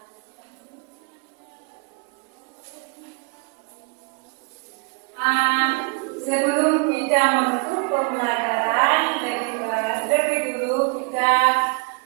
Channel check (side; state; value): left; quieter; 32.7 dB